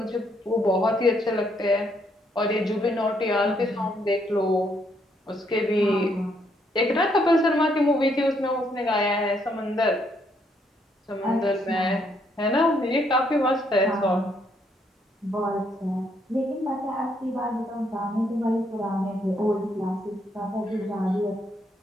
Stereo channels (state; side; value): normal; both; correlation 0.72